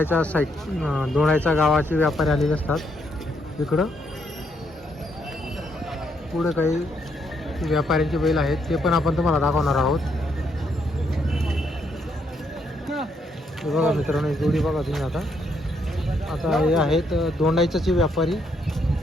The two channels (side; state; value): both; normal; correlation 0.75